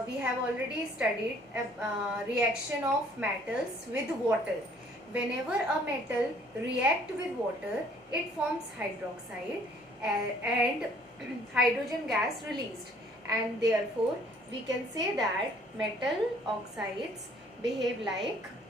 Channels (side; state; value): both; normal; correlation 0.59